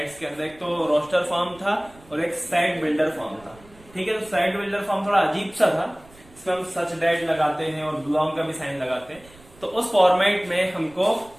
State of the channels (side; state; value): right; noise; rumble, 24 dB below the sound